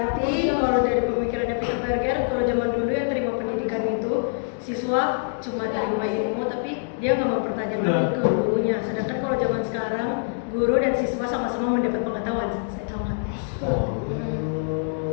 kalau dari pemikirannya Peter Berger, kalau zaman dulu yang terima pendidikan itu siswa cuma terima ilmu tapi dia nggak mempertanyakan ke gurunya. Sedangkan kalau zaman sekarang guru dan siswa sama-sama mendapat pengetahuan. Saya tahu nggak?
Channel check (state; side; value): silent; right; digital silence